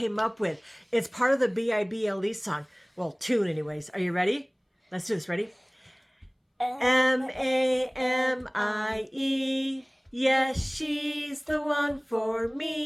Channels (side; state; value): both; identical; correlation 1.00